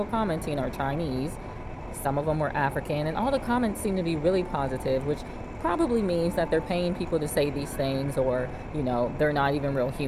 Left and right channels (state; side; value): identical; both; correlation 1.00